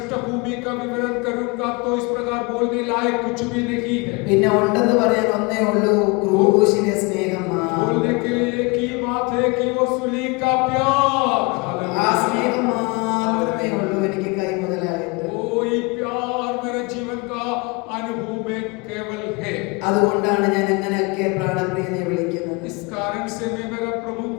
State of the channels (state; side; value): quieter; right; 28.1 dB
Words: का विवरण करूंगा तो इस प्रकार बोलने लायक कुछ भी नहीं है. പിന്നെ ഉണ്ടെന്ന് പറയാൻ ഒന്നേ ഉള്ളൂ, ക്രൂശിലെ സ്നേഹം. बोलने के लिए एक ही बात है कि वो सूली का प्यार. ആ സ്നേഹം മാത്രമേ ഉള്ളൂ എനിക്ക് കൈമുതലായിട്ട്. वही प्यार मेरे जीवन का अनुभव में केवल है. അതുകൊണ്ടാണ് ഞാൻ അങ്ങനെയൊക്കെ പ്രാണപ്രിയനെ വിളിക്കുന്നത്. इस कारण से मैं मेरे प्रभु